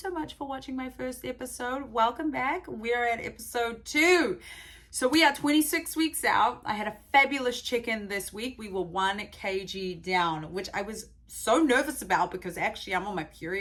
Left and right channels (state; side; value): identical; both; correlation 1.00